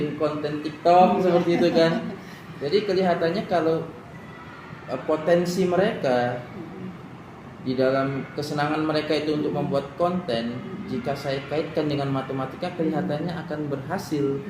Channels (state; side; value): identical; both; correlation 1.00